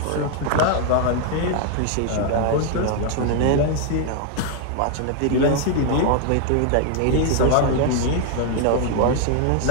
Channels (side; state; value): both; different; correlation 0.00